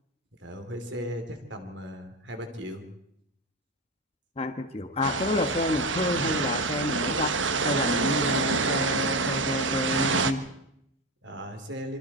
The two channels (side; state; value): both; normal; correlation 0.17